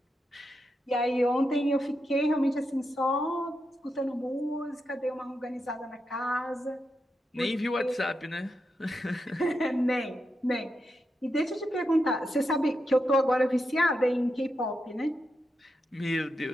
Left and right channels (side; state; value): both; normal; correlation 0.86